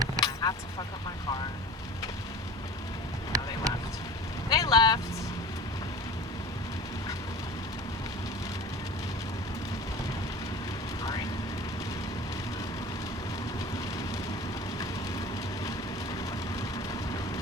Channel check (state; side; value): normal; both; correlation 0.38